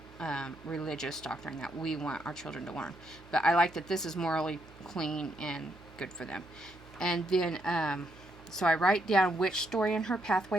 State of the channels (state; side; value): noise; right; hum, 23 dB below the sound